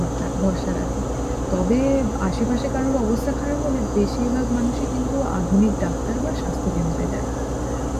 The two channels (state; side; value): identical; both; correlation 1.00